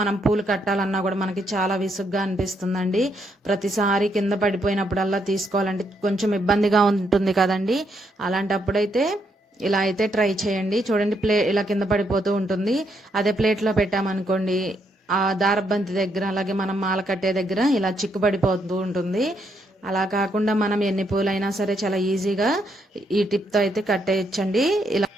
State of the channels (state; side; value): normal; both; correlation 0.76